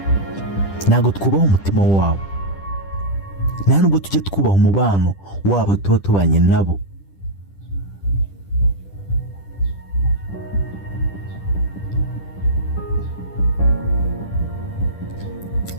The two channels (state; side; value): late; right; 10 ms